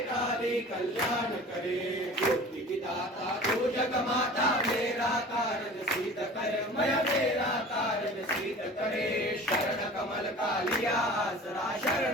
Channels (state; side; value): normal; both; correlation 0.41